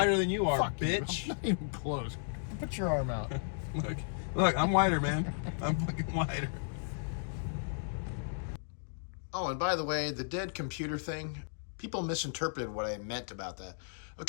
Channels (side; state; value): right; silent; digital silence